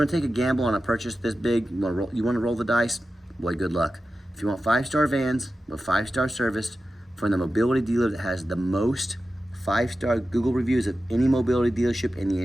to take a gamble on a purchase this big, you want to roll the dice, boy, good luck. If you want 5-star vans with 5-star service from the mobility dealer that has the most 5-star Google reviews of any mobility dealership in the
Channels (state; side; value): normal; both; correlation 0.93